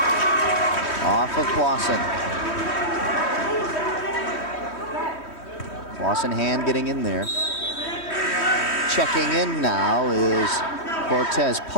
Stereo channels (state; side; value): late; right; 3.1 ms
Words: Off of Clawson. Clawson hand getting in there. Checking in now is Cortez